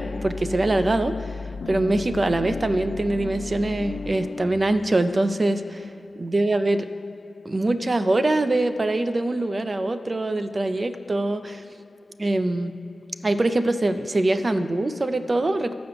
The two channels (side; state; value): both; normal; correlation 0.96